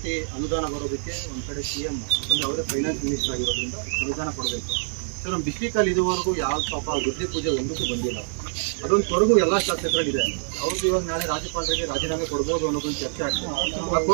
ಅನುದಾನ ಬರೋದಕ್ಕೆ ಒಂದು ಕಡೆ CM ಯಾಕಂದರೆ ಅವರೇ ಫೈನಾನ್ಸ್ ಮಿನಿಸ್ಟರ್ ಆಗಿರೋದ್ರಿಂದ ಅನುದಾನ ಕೊಡಬೇಕು. ಸೊ ನಮ್ಮ ಡಿಸ್ಟ್ರಿಕ್ಟಲ್ಲಿ ಇದುವರೆಗೂ ಯಾವ ಪಾಪ ಗುದ್ದಿ ಪೂಜೆ ಒಂದಕ್ಕೂ ಬಂದಿಲ್ಲ. ಅದೊಂದು ಕೊರಗು ಎಲ್ಲ ಶಾಸಕರಲ್ಲಿದೆ. ಅವ್ರದ್ದು ಇವಾಗ ನಾಳೆ ರಾಜ್ಯಪಾಲರಿಗೆ ರಾಜೀನಾಮೆ ಕೊಡ್ಬೋದು ಅನ್ನೋದೊಂದು ಚರ್ಚೆ ಆಗ್ತದೆ. ಆ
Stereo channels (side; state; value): left; silent; digital silence